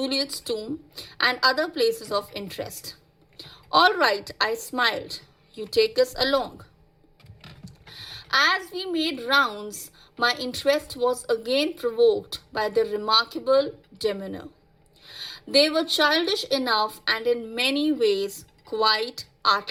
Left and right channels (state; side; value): identical; both; correlation 1.00